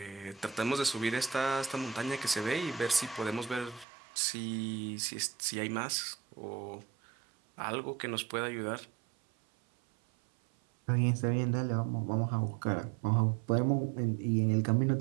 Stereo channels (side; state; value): left; drops out; at 3.9 s